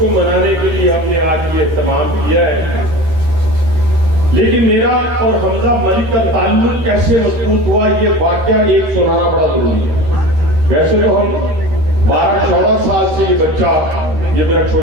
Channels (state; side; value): late; left; 13 ms